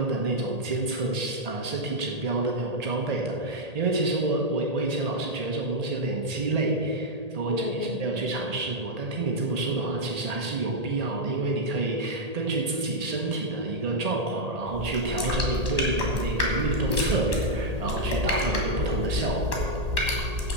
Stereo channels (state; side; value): late; left; 1.8 ms